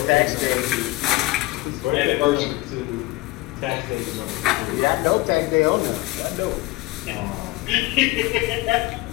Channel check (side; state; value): right; quieter; 20.5 dB